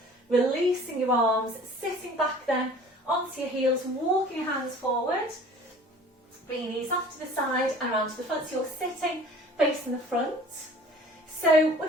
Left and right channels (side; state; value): both; normal; correlation 0.47